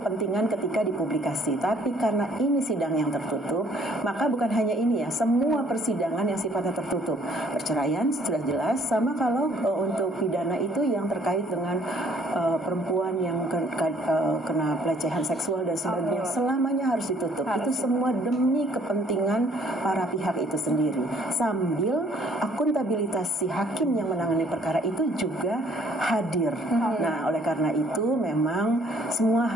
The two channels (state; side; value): normal; both; correlation 0.61